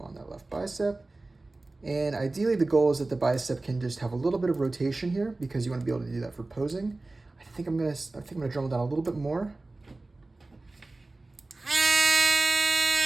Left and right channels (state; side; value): quieter; left; 3.1 dB